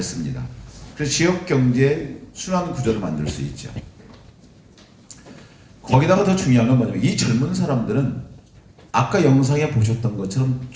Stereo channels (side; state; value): both; identical; correlation 1.00